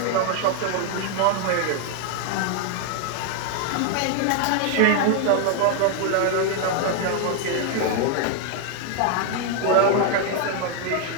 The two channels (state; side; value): different; both; correlation 0.00